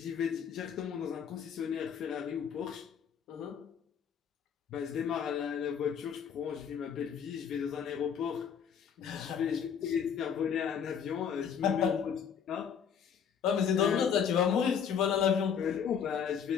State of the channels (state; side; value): quieter; right; 7.6 dB